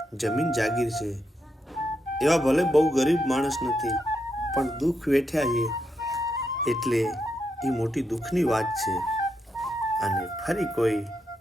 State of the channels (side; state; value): both; normal; correlation 0.82